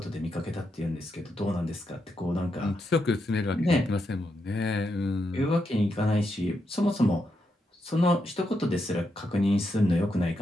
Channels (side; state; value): both; normal; correlation 0.83